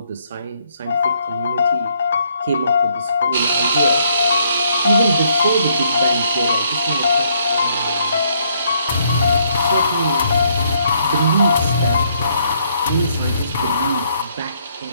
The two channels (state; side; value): inverted; both; correlation -0.69